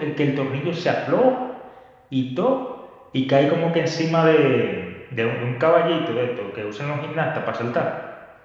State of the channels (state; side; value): identical; both; correlation 1.00